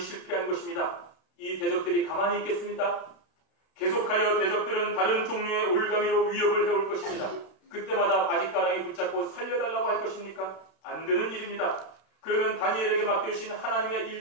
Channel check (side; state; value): right; late; 32 ms